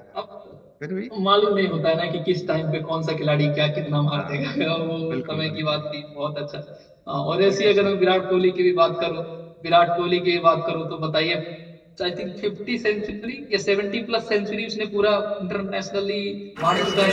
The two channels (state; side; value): identical; both; correlation 1.00